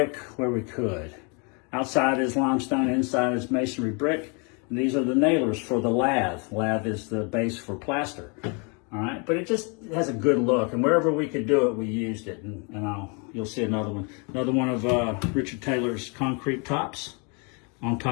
where we could. Outside is limestone, inside is masonry brick. And these are the nailers for the lath. Lath is the base for plaster. All right, but it just has a good look, and wherever we could do it, we used it. And you'll see another one of Richard Taylor's concrete tops on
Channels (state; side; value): quieter; right; 34.1 dB